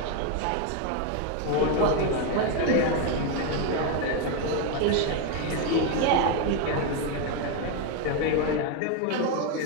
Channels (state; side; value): different; both; correlation 0.01